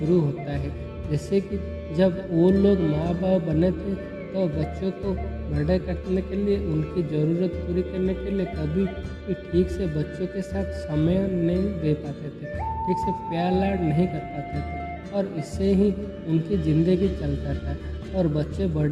होता है। जैसे कि जब वो लोग माँ बाप बने थे तो बच्चों को बड़ा करने के लिए, उनकी ज़रूरत पूरी करने के लिए कभी भी ठीक से बच्चों के साथ समय नहीं दे पाते थे, ठीक से प्यार लाड नहीं कर पाते थे और इससे ही उनकी ज़िंदगी चलता था और बच्चे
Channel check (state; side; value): identical; both; correlation 1.00